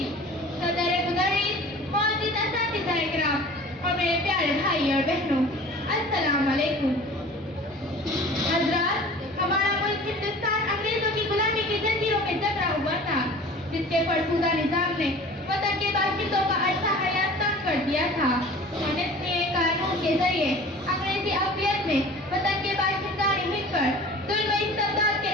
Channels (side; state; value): both; normal; correlation 0.43